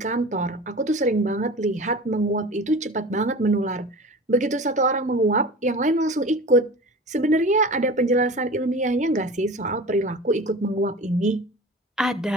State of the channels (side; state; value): both; normal; correlation 0.36